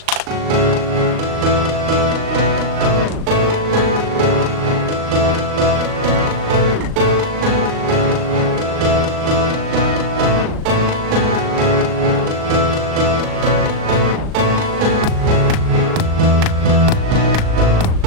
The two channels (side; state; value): left; late; 38 ms